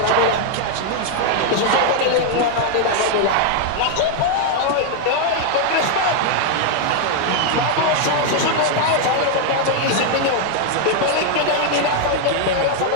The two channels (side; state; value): both; different; correlation 0.00